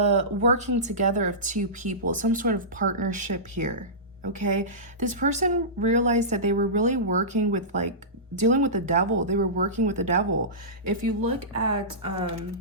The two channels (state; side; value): normal; both; correlation -0.20